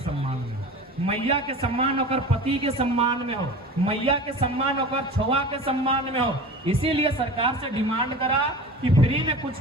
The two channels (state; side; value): normal; both; correlation 0.35